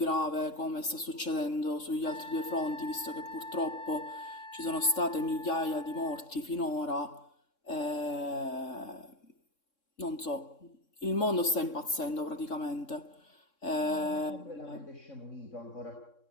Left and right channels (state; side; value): late; right; 3.6 ms